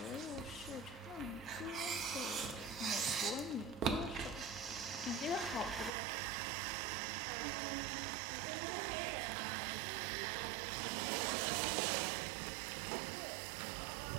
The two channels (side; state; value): left; drops out; at 5.9 s